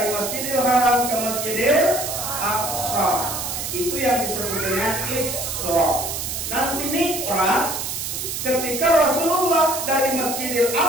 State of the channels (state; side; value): noise; right; hiss, 4 dB below the sound